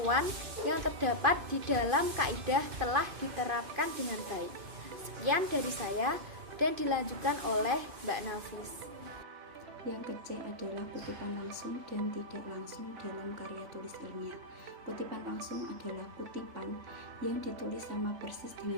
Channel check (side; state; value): left; late; 2.5 ms